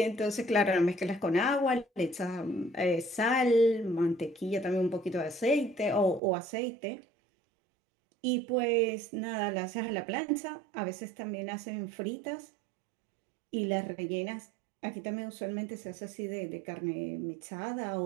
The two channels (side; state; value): left; drops out; at 6.2 s